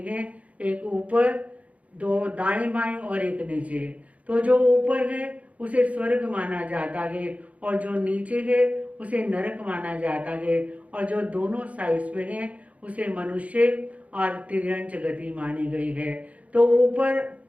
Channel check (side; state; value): left; late; 0.067 ms